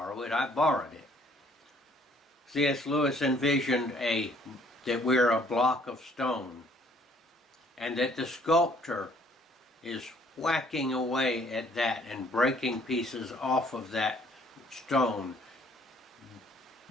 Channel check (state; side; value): normal; both; correlation 0.61